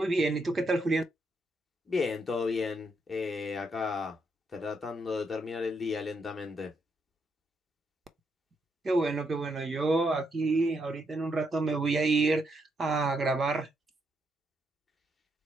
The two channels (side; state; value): both; normal; correlation 0.78